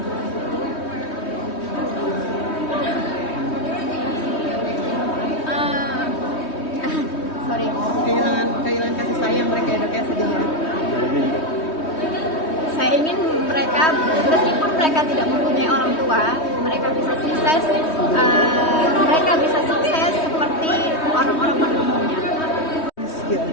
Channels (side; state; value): right; late; 3.2 ms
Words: sorry. Kehilangan kasih sayang mereka ya, Dok ya, sedih ya. Saya ingin mereka, meskipun mereka tidak mempunyai orang tua, mereka bisa sukses. Mereka bisa sukses seperti orang-orang pada umumnya.